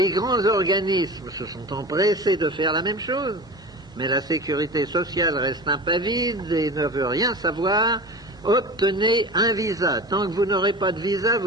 grands organismes se sont empressés de faire la même chose, mais la sécurité sociale reste impavide et ne veut rien savoir. Obtenez un visa. Tant que vous n'aurez pas de visa,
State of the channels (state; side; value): normal; both; correlation 0.33